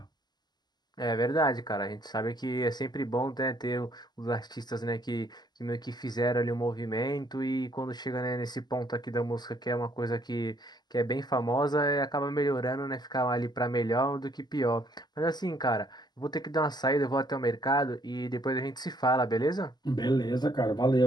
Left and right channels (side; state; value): right; late; 0.20 ms